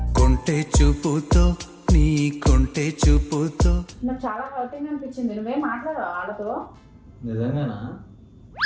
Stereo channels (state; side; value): identical; both; correlation 1.00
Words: కొంటే చూపుతో నీ కొంటే చూపుతో నాకు చాలా హర్టింగ్ అనిపించింది. నువ్వేం మాట్లాడవు వాళ్ళతో? నిజంగానా?